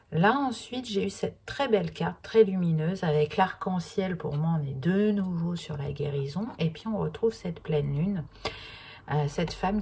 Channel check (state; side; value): identical; both; correlation 1.00